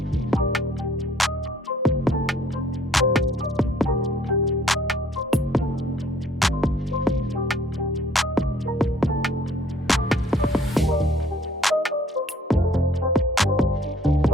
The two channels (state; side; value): normal; both; correlation 0.60